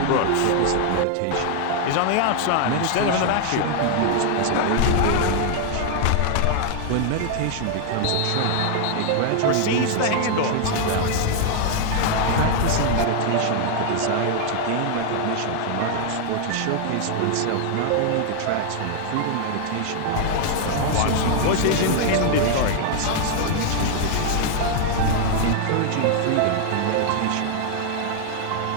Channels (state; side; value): different; both; correlation 0.00